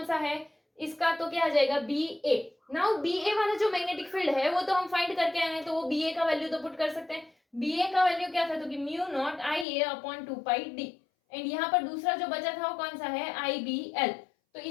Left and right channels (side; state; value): right; drops out; at 9.7 s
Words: सा है इसका तो क्या आ जाएगा बी ए। नाउ बी ए वाला जो मैग्नेटिक फील्ड है वो तो हम फाइंड करके आए हैं तो वो बी ए का वैल्यू तो पुट कर सकते हैं। बी ए का वैल्यू क्या था तो कि mu naught I A upon 2 pi D and यहाँ पर दूसरा जो बचा था वो कौन सा है आई बी एल, तो